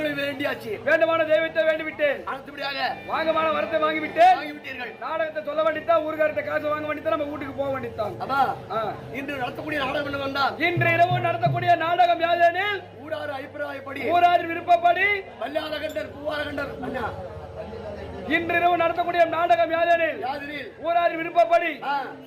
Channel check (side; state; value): both; identical; correlation 1.00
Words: வேண்டியாச்சு. வேண்டுமான தெய்வத்தை வேண்டிவிட்டேன். அடுத்தபடியாக வாங்கமான வரத்தை வாங்கிவிட்டேன். வாங்கிவிட்டீர்கள். நாடகத்தை சொல்ல வேண்டித்தான், ஊர்காரத்தை காசு வாங்க வேண்டித்தான், நம்ம வீட்டுக்கு போக வேண்டித்தான். இன்று நடத்தக்கூடிய நாடகம் என்ன வந்தால் இன்று இரவு நடத்தக்கூடிய நாடகம் யாதெனில் ஊரார் அபிப்பிராயப்படி ஊரார் விருப்பப்படி வல்லாரகண்டர் பூவாரகண்டர் இன்று இரவு நடத்தக்கூடிய நாடகம் யாதெனில் ஊரார் விருப்பப்படி